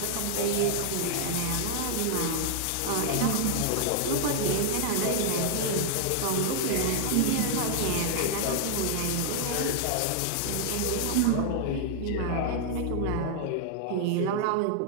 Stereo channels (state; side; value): different; both; correlation -0.01